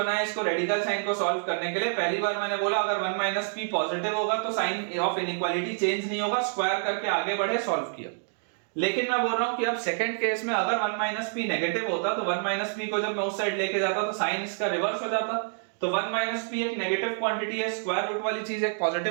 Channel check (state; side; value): silent; left; digital silence